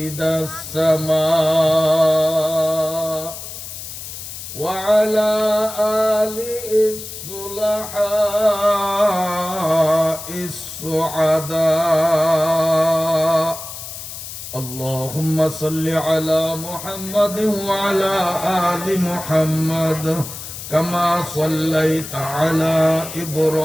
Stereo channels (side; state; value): left; noise; hiss, 10 dB below the sound